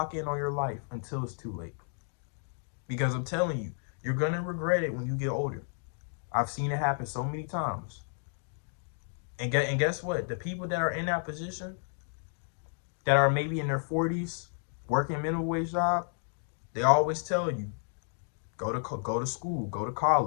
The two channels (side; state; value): right; silent; 57 dB below the other